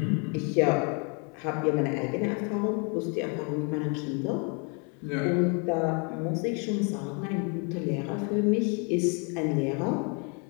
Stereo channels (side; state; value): right; quieter; 36.1 dB